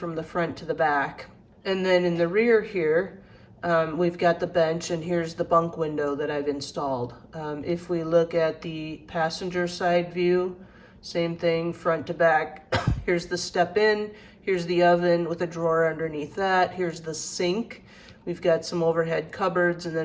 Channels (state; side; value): identical; both; correlation 1.00